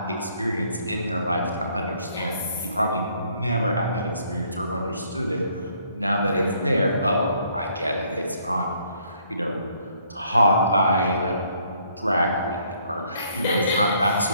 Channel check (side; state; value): both; inverted; correlation -0.66